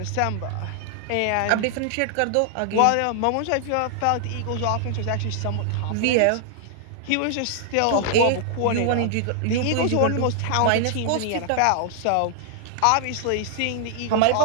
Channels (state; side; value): different; both; correlation -0.01